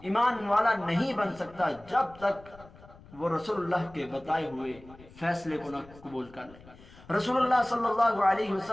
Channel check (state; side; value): noise; left; rumble, 22 dB below the sound